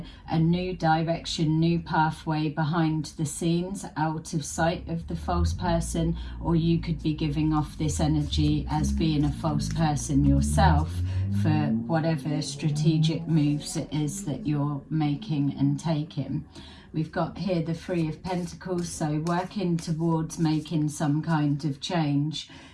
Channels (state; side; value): identical; both; correlation 1.00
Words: new direction, new pathway behind the scenes, out of sight of the false person, or you could be giving off this energy as being a false person yourself for whatever strategic moves it is that you're making and taking. We've got here the Three of Pentacles, so working towards making some kind of change.